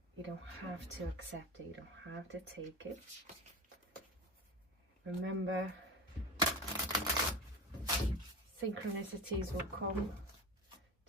you don't have to accept it, you don't have to take it. Remember, synchronicities will come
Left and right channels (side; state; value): both; normal; correlation 0.28